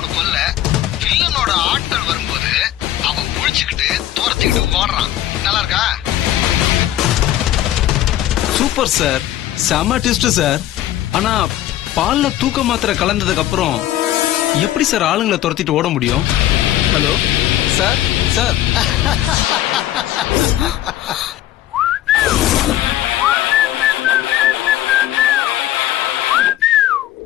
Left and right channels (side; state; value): right; quieter; 13.1 dB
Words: கொல்ல வில்லனோட ஆட்கள் வரும்போது அவன் புடிச்சுக்கிட்டு தூரத்துக்கிட்டு ஓடுறான். நல்லா இருக்கா? சூப்பர் சார், செம ட்விஸ்ட் சார். ஆனா பால்ல தூக்க மாத்திரை கலந்ததுக்கு அப்புறம் எப்படி சார் ஆளுங்களை துரத்திட்டு ஓட முடியும்? Hello sir. சார்